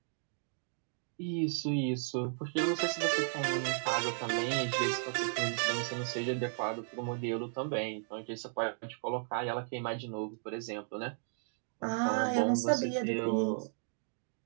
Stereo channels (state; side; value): silent; left; digital silence